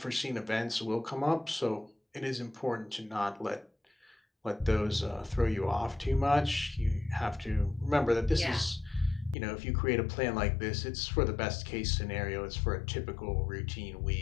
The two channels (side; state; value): right; drops out; at 9.3 s